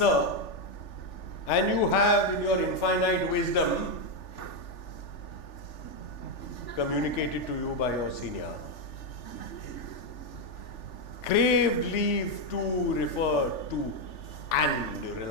and you have in your infinite wisdom communicated to you by your senior, craved leave to refer to and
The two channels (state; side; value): late; right; 3.4 ms